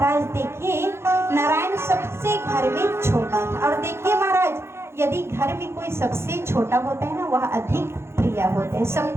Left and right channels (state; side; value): late; left; 0.12 ms